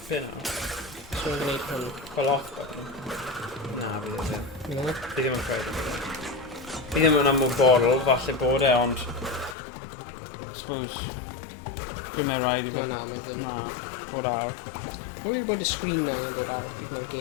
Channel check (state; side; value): drops out; right; at 9.6 s